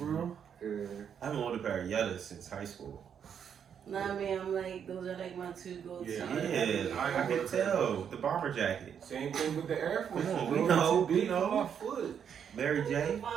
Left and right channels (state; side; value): quieter; left; 8.0 dB